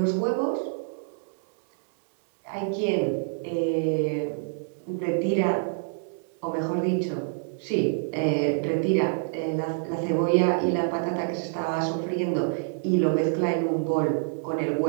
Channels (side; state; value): left; silent; 60 dB below the other